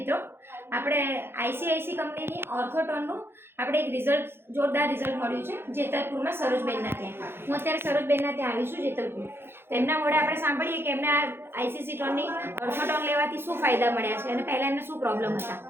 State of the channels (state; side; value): late; left; 0.11 ms